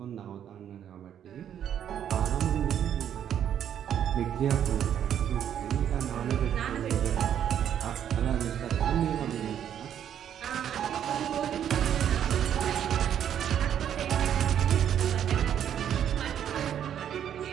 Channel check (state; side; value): quieter; left; 9.6 dB